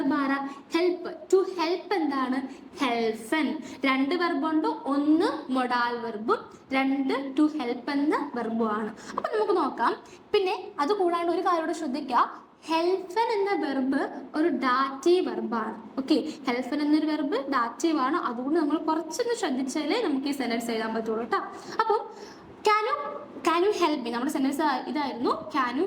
ആരാ? ഹെൽപ്പ്. ടു ഹെൽപ്പ് എന്താണ്? ഹെൽഫൻ. രണ്ട് വെർബുണ്ട്, ഒന്ന് മൊഡാൽ വെർബും രണ്ട് ടു ഹെൽപ്പ് എന്ന വെർബും ആണ്. അപ്പൊ നമുക്ക് നോക്കാം. പിന്നെ അത് കൂടാണ്ട് ഒരു കാര്യം കൂടെ ശ്രദ്ധിക്കുക, ഹെൽഫൻ എന്ന വെർബ് ഒരു ഡാറ്റീവ് വെർബാണ്. ഓക്കെ, ഹെൽഫൻ എന്നൊരു വെർബ് ഡാറ്റീവ് ആണ്. അതുകൊണ്ട് നമ്മൾ കുറച്ചൊന്ന് ശ്രദ്ധിച്ചാലേ നമുക്ക് ഈ സെന്റൻസ് എഴുതാൻ പറ്റുള്ളൂ കേട്ടോ. അപ്പം ക്യാൻ യു ഹെൽപ്പ് മീ, നമ്മുടെ സെന്റൻസ് ഇതായിരുന്നു, ക്യാൻ യു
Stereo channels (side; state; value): both; identical; correlation 1.00